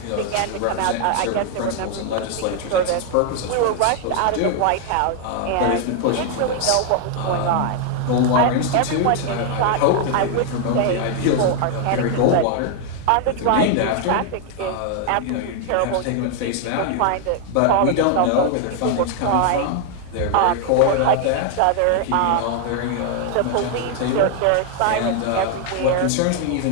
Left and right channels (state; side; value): different; both; correlation 0.00